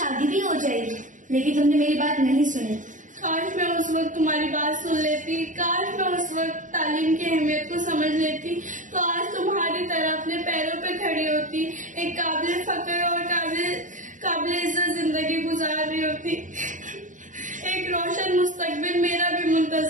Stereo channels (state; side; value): late; left; 0.37 ms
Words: भी हो जाएगी, लेकिन तुमने मेरी बात नहीं सुनी। काश मैं उस वक्त तुम्हारी बात सुन लेती, काश मैं उस वक्त तालीम की अहमियत को समझ लेती, तो आज तुम्हारी तरह अपने पैरों पे खड़ी होती, एक काबिल फकर और काबिल इज्जत जिंदगी गुजार रही होती। एक रोशन मुस्तकबिल मेरा भी